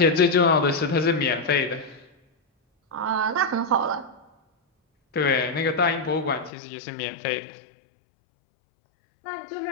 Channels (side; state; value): right; drops out; at 6.5 s